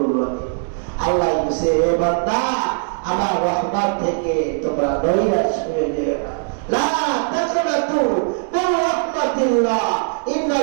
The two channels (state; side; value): silent; left; digital silence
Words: রহিম। আল্লাহ বলেছে, হে বান্দা, আমার রহমত থেকে তোমরা নৈরাশ হয়ে যেও না। লা তাকনাতু মির রাহমাতিল্লাহ